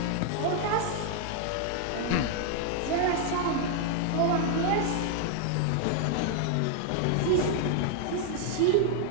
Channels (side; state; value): both; different; correlation 0.00